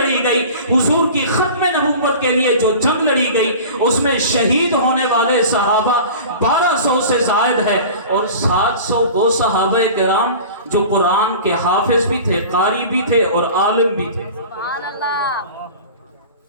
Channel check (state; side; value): inverted; both; correlation -0.38